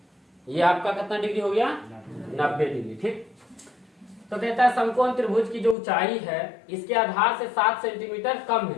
ये आपका कितना डिग्री हो गया, 90 डिग्री। ठीक, तो कहता है समकोण त्रिभुज की जो ऊंचाई है इसके आधार से 7 सेंटीमीटर कम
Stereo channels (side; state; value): right; drops out; at 5.8 s